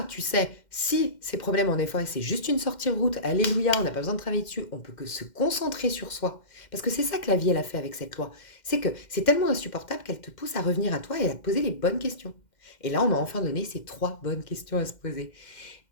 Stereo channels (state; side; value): late; right; 2.1 ms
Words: tu sais, si ces problèmes, en effet, c'est juste une sortie de route, alléluia, on n'a pas besoin de travailler dessus, on peut que se concentrer sur soi. Parce que c'est ça que la vie, elle a fait avec cette loi. C'est que c'est tellement insupportable qu'elle te pousse à revenir à toi et à te poser les bonnes questions. Et là, on m'a enfin donné ces trois bonnes questions à se poser.